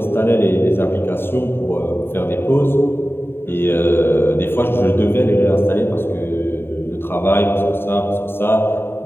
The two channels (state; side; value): late; right; 0.11 ms